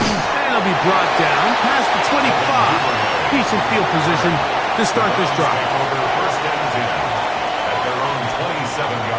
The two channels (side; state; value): both; identical; correlation 1.00